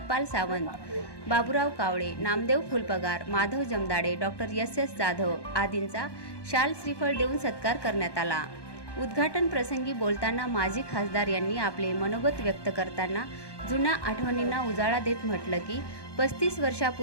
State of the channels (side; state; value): right; late; 1.1 ms